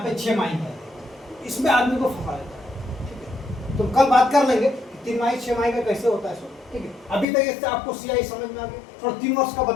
पे 6 माही कर देगा, इसमें आदमी को फंसा देता है, ठीक है। तो कल बात कर लेंगे 3 माही 6 माही का कैसे होता है सो, ठीक है। अभी तक इससे आपको सीआई समझ में आ गया, थोड़ा 3 वर्ष का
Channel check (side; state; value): right; drops out; at 7.2 s